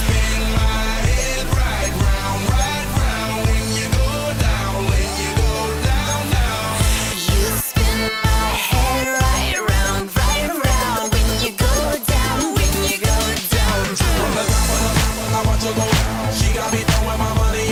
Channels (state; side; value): identical; both; correlation 1.00